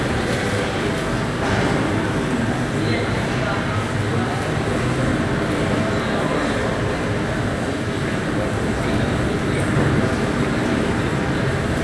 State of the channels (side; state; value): both; identical; correlation 1.00